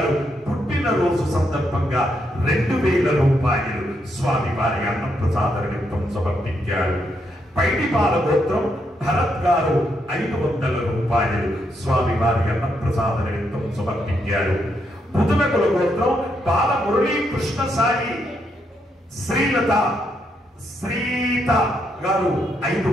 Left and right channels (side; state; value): both; normal; correlation 0.78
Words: పుట్టినరోజు సందర్భంగా 2000 రూపాయలు స్వామివారి అన్నప్రసాద నిమిత్తం సమర్పించారు. పైడిపాల గోత్రం భరత్ గారు 500 రూపాయలు స్వామివారి అన్నప్రసాద నిమిత్తం సమర్పించారు. బుధనకుల గోత్రం బాల మురళీ కృష్ణ సాయి శ్రీలత గారు